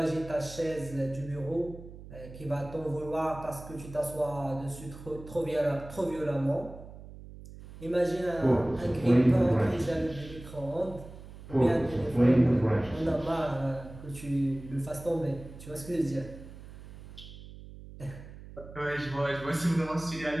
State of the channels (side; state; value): right; noise; hum, 15 dB below the sound